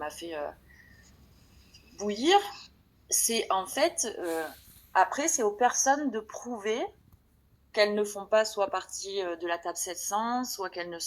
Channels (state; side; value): identical; both; correlation 1.00